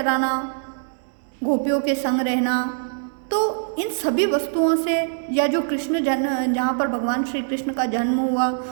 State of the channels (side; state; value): left; silent; 63 dB below the other